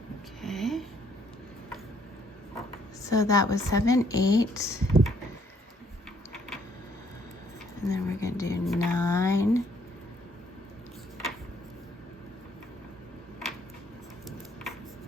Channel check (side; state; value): both; normal; correlation 0.66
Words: Okay. So that was 7, 8. And then we're gonna do 9,